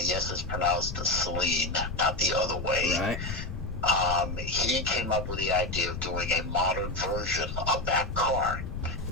yes, it's pronounced Saleen, not the other way. Right. He came up with the idea of doing a modern version of that car.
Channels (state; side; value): noise; left; rumble, 7 dB below the sound